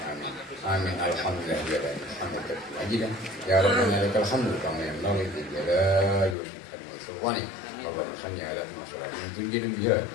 amin. Amin alhamdulillah ya rabbil hamdan ajidan ya rabbana lakal hamdu kama yanbaghi li jalali wajhika wa sultani. Allahumma salli ala Muhammadin tunjina biha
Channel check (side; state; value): right; drops out; at 6.4 s